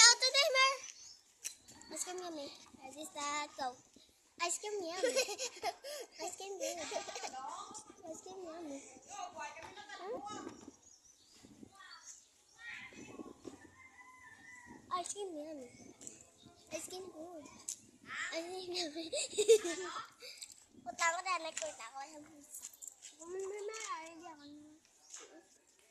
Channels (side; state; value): both; identical; correlation 1.00